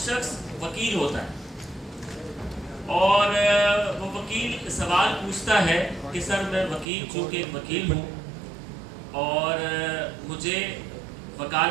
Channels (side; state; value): left; drops out; at 6.9 s